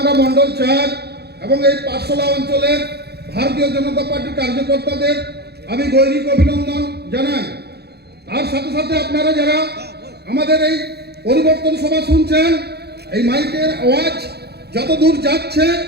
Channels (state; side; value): late; left; 0.47 ms